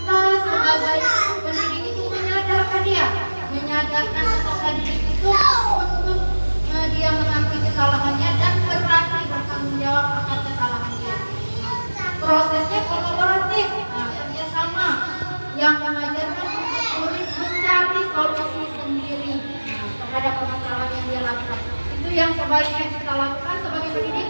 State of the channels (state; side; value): inverted; both; correlation -1.00